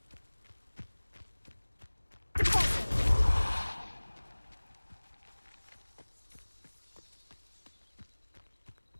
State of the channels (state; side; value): inverted; both; correlation -1.00